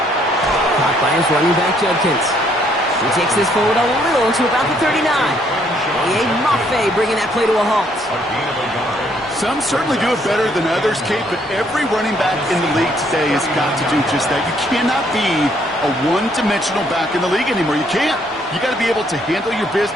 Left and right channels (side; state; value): both; normal; correlation 0.68